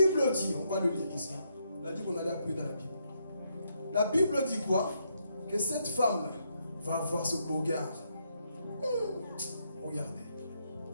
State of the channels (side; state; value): both; inverted; correlation -0.77